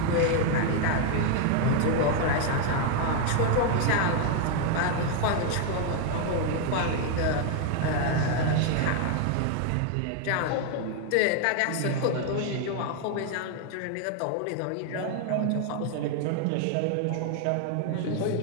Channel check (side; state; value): both; different; correlation 0.01